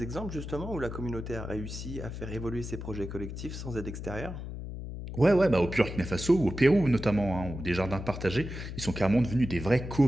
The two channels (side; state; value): left; noise; hum, 8 dB below the sound